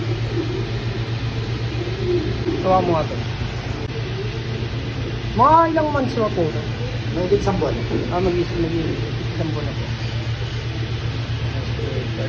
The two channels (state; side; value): identical; both; correlation 1.00